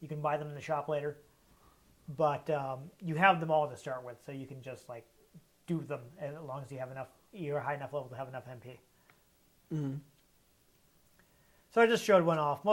You can buy them in the shop later, but you have them all to start with, so you can just do them as long as you have enough. You're a high enough level to have enough MP. So I just showed one off.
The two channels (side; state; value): both; identical; correlation 1.00